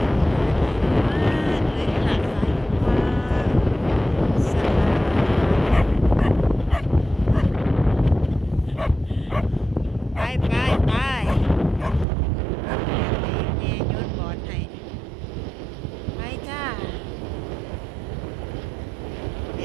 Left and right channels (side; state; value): left; drops out; at 12.1 s